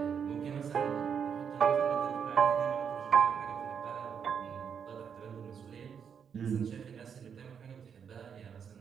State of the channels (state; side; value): quieter; left; 7.3 dB